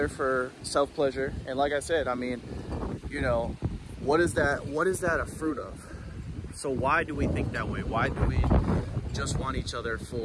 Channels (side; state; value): both; identical; correlation 1.00